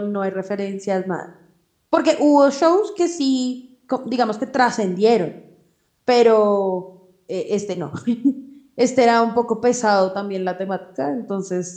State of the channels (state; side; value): identical; both; correlation 1.00